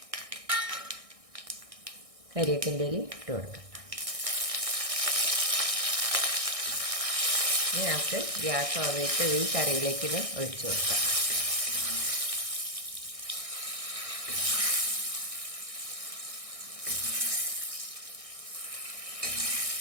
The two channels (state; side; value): late; left; 1.6 ms